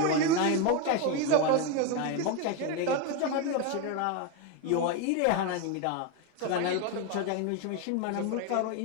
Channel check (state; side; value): different; both; correlation 0.02